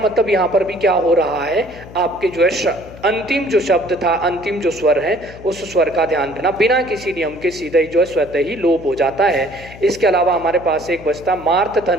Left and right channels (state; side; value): noise; left; hum, 17 dB below the sound